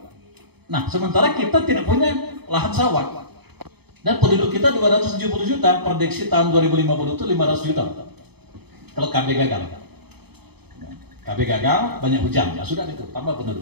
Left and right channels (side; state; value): left; late; 0.98 ms